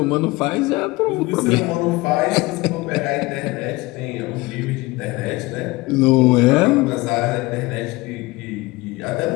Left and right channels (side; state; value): right; quieter; 21.7 dB